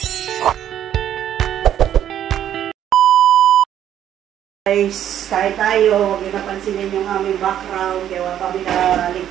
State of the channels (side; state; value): left; quieter; 10.6 dB